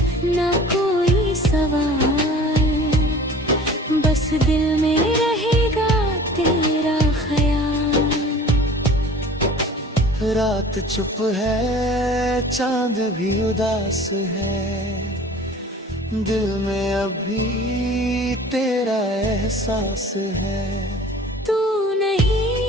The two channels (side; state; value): both; normal; correlation 0.45